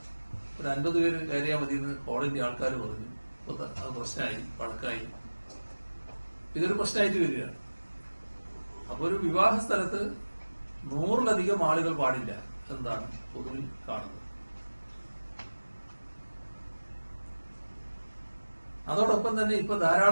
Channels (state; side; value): inverted; both; correlation -1.00